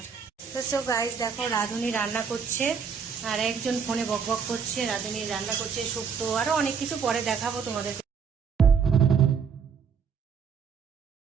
তো সো গাইস দেখো রাধুনি রান্না করছে, আর একজন ফোনে বক বক করছে। রাধুনি রান্না করছে শুক্তো, আরো অনেক কিছু পরে দেখাবো তোমাদের।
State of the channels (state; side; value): quieter; left; 6.4 dB